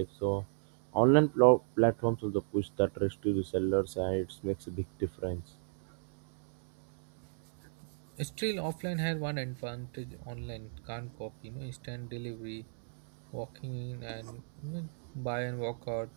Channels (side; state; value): left; silent; digital silence